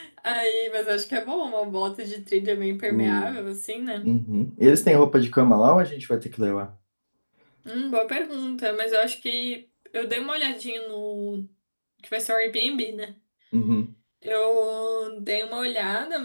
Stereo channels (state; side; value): inverted; both; correlation -1.00